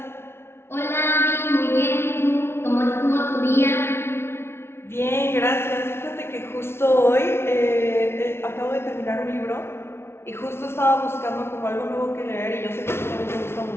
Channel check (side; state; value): right; late; 0.12 ms